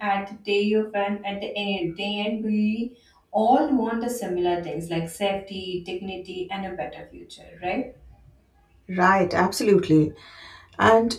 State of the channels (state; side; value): identical; both; correlation 1.00